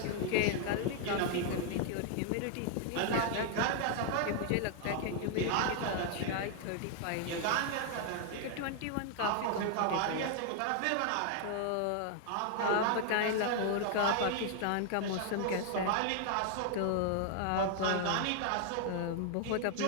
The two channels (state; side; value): different; both; correlation 0.00